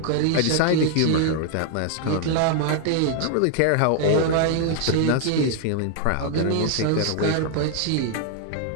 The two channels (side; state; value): both; different; correlation 0.00